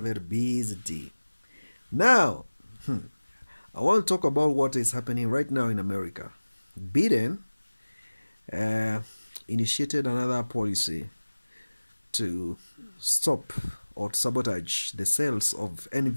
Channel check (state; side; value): inverted; both; correlation -1.00